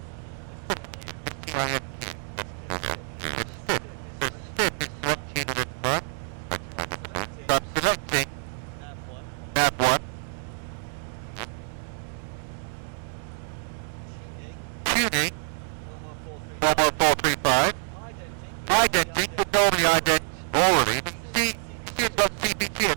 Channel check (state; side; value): silent; left; digital silence